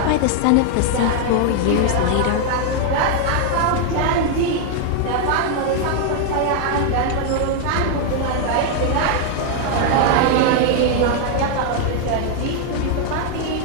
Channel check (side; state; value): both; different; correlation 0.00